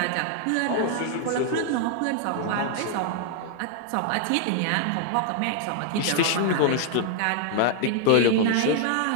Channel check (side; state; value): both; different; correlation 0.00